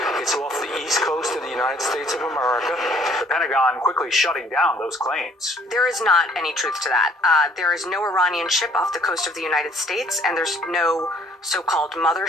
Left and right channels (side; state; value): both; normal; correlation 0.60